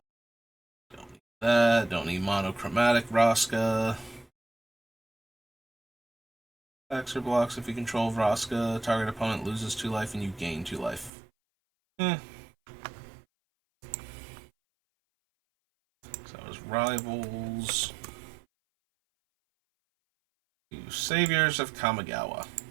need that. Don't need Monochromatic Vraska. Attacks or blocks if you control Vraska. Target opponent loses 2 life and you gain 2 life. So that was Rivals. Saviors of Kamigawa.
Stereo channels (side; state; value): left; drops out; at 11.1 s